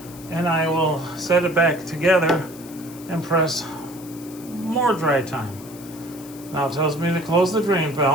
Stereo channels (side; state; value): left; noise; hiss, 19 dB below the sound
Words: and I will set it back together and press more dry time. Now it tells me to close the drain